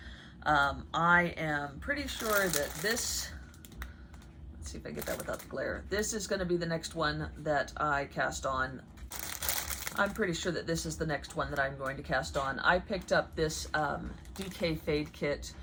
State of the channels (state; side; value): identical; both; correlation 1.00